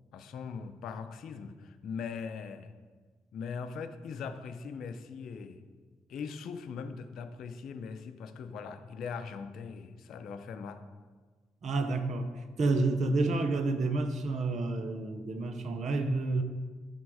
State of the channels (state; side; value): normal; both; correlation 0.79